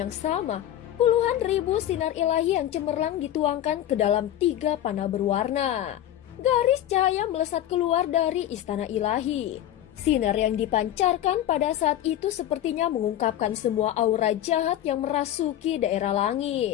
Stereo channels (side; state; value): right; quieter; 12.0 dB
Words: sama, puluhan ribu sinar ilahi yang cemerlang dituangkan ke dalam 3 panah berwarna. Garis cahaya melesat keluar dari istana ilahi. Sinar yang dipancarkan pada saat itu sepertinya mengungkapkan semua aura jahat yang merasuki daerah